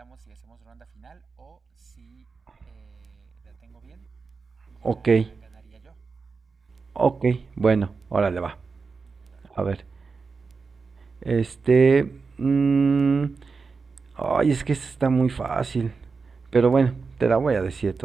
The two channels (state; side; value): quieter; left; 4.7 dB